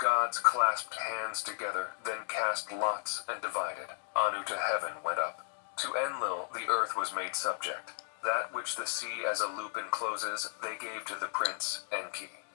clasped hands together, then cast lots and divided. Anu to heaven went up. To Enlil the earth was made subject. That which the sea as a loop encloses, they gave to the prince Enki.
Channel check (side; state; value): right; silent; digital silence